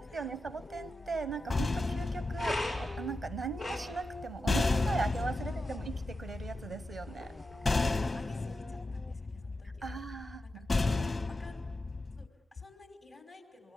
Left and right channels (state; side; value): normal; both; correlation 0.90